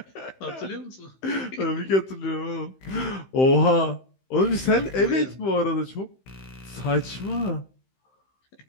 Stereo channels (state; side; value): late; right; 15 ms